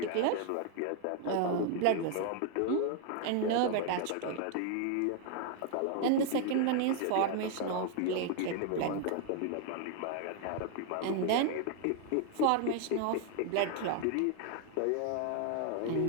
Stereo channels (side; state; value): both; different; correlation 0.00